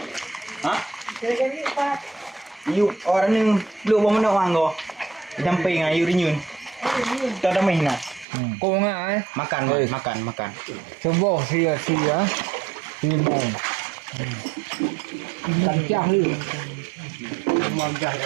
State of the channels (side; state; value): left; drops out; at 8.2 s